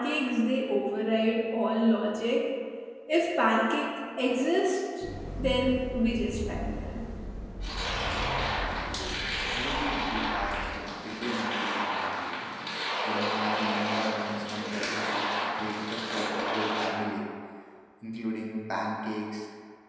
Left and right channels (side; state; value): both; identical; correlation 1.00